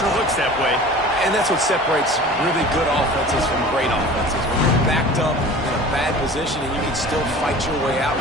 looks that way. And that's what separates really good offenses from great offenses. When you're backed up in a bad position and you can still fight your way out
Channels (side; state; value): both; normal; correlation 0.41